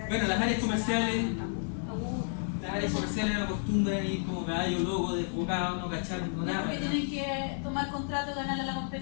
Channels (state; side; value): silent; right; digital silence